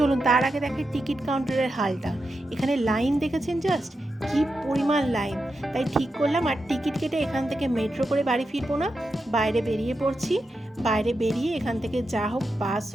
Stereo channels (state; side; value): normal; both; correlation 0.88